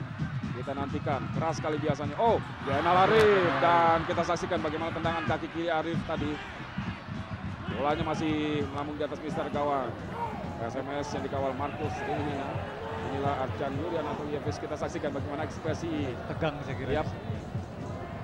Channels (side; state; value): both; identical; correlation 1.00